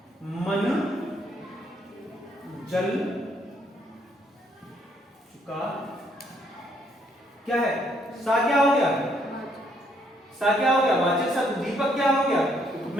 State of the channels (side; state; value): both; normal; correlation 0.70